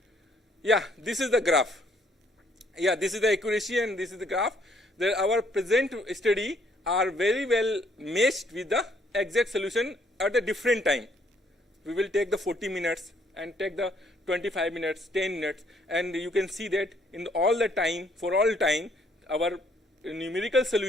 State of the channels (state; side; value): normal; both; correlation 0.67